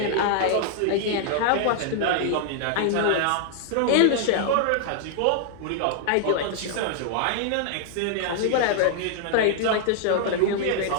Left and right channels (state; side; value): different; both; correlation -0.01